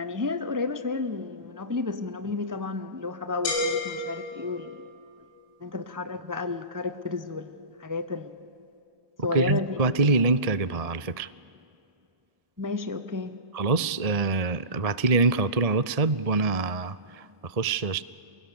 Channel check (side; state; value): left; late; 1.7 ms